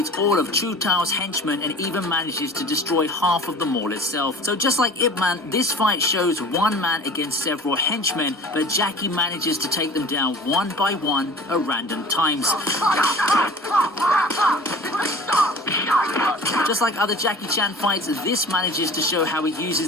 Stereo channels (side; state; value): both; normal; correlation 0.43